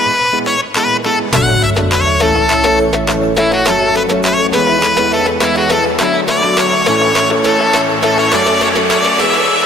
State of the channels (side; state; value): both; normal; correlation 0.68